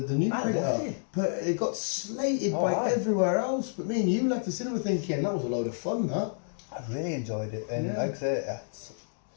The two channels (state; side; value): silent; right; digital silence